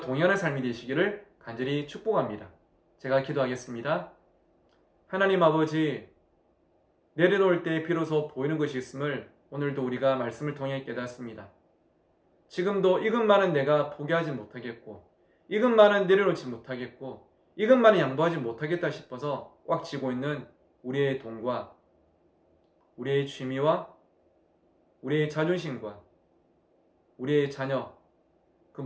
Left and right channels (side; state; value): both; identical; correlation 1.00